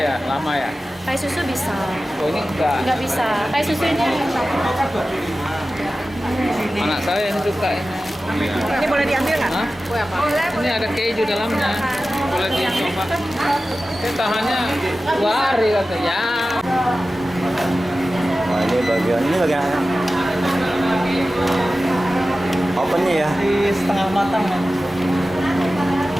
lama ya. Kayak susu bisa. Oh ini enggak. Nggak bisa. Kayak susu ini. Anak saya yang suka ini. Ini boleh diambil nggak? Hah? Ini ada keju dalamnya. Boleh dicoba. Ini tahannya 2 hari katanya. Wah, ini bagian opennya ya. Di setengah matang ya.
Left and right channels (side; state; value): both; normal; correlation 0.95